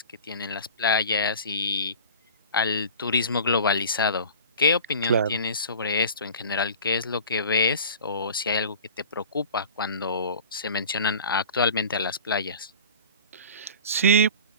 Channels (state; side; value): inverted; both; correlation -0.39